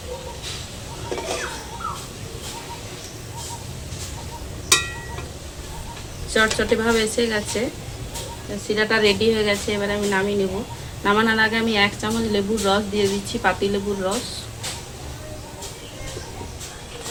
চটচটে ভাবে এসে গেছে, শিরাটা রেডি হয়ে গেছে। এবার আমি নামিয়ে নেব। নামানোর আগে আমি 1 চামচ লেবুর রস দিয়ে দিচ্ছি, পাতি লেবুর রস।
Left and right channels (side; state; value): both; identical; correlation 1.00